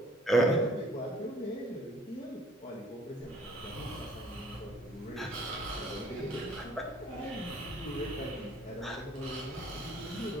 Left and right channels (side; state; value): both; normal; correlation 0.56